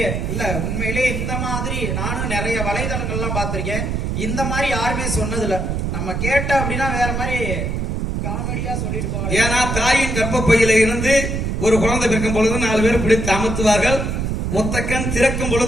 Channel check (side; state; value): right; noise; rumble, 1 dB below the sound